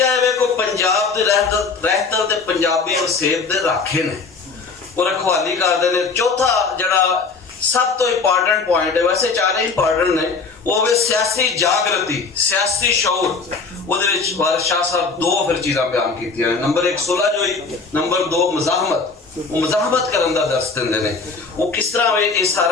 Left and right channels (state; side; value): quieter; right; 4.6 dB